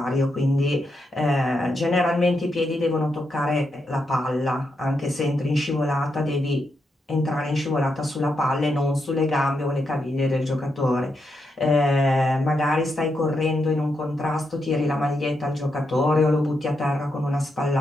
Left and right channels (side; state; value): both; normal; correlation 0.83